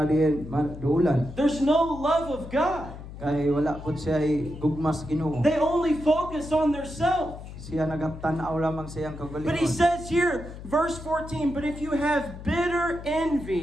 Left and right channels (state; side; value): noise; left; hum, 13 dB below the sound